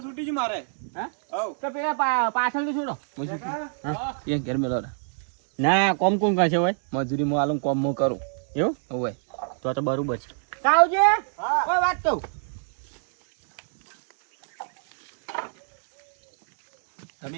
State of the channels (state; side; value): silent; left; digital silence